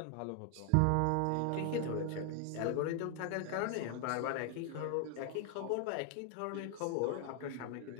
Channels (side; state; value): both; different; correlation 0.00